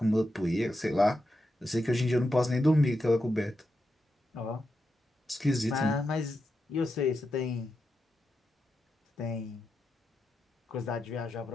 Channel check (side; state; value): both; normal; correlation 0.87